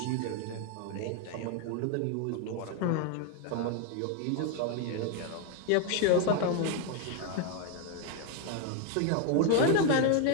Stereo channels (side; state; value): both; different; correlation 0.01